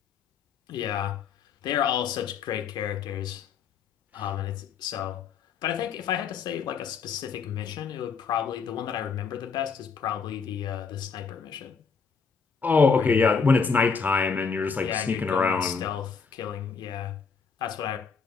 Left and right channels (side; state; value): right; quieter; 5.6 dB